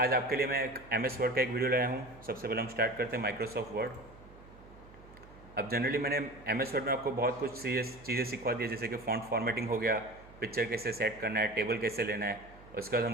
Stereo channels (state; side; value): noise; right; hum, 21 dB below the sound